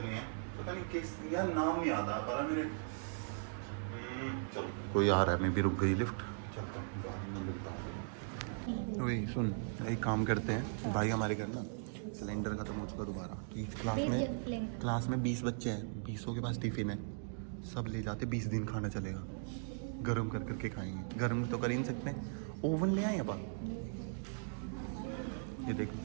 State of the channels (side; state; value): left; silent; digital silence